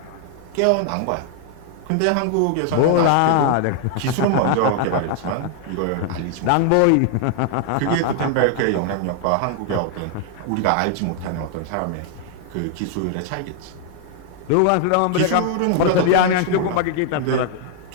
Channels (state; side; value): different; both; correlation 0.00